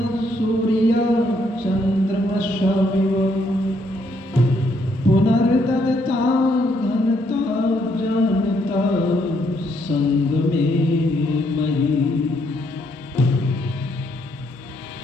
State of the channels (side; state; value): both; normal; correlation 0.72